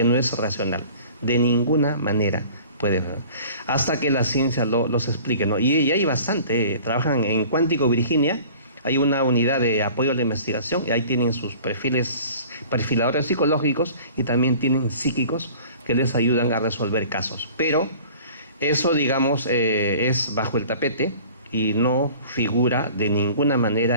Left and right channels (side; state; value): both; inverted; correlation -0.46